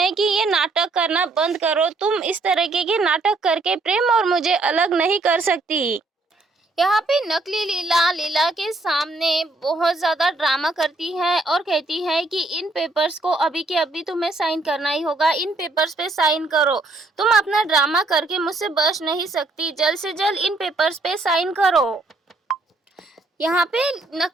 कि ये नाटक करना बंद करो, तुम इस तरीके के नाटक करके प्रेम और मुझे अलग नहीं कर सकती। यहाँ पे नकली लीला के सामने बहुत ज़्यादा ड्रामा करती है और कहती है कि इन पेपर्स को अभी के अभी तुम्हें साइन करना ही होगा, इन पेपर्स पे साइन करो। तुम अपना ड्रामा करके मुझसे बच नहीं सकती, जल्द से जल्द इन पेपर्स पे साइन करो। यहाँ पे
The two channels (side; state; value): left; quieter; 3.2 dB